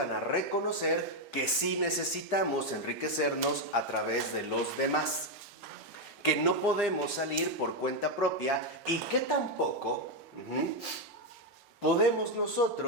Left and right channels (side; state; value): both; normal; correlation 0.04